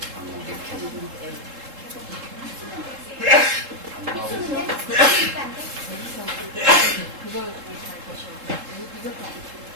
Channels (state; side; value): late; left; 3.7 ms